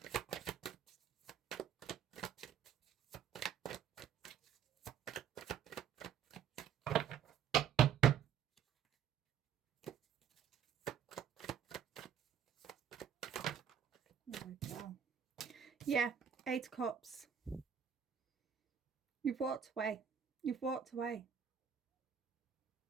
There we go. Yeah, 8 of Cups. You've walked away. You've walked away.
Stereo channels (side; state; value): left; quieter; 8.3 dB